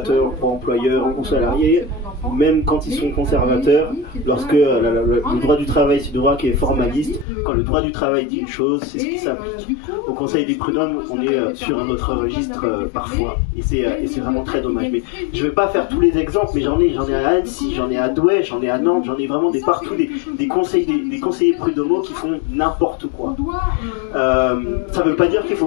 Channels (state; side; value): drops out; right; at 7.2 s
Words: pour employeurs ou salariés, même quand ils sont conservateurs, lorsque le droit du travail, c'est le droit qui est formaliste, quand le droit du travail dit une chose, c'est ce qui s'applique. Au Conseil des prud'hommes, on est sur un autre registre parfois, et c'est vraiment très dommage. Mais je ne vais pas faire tous les exemples, mais j'en ai à Annecy, j'en ai à Douai, j'en ai à Nantes, j'en ai vraiment partout des conseillers prud'homaux qui font n'importe quoi. Ça ne veut pas dire qu'il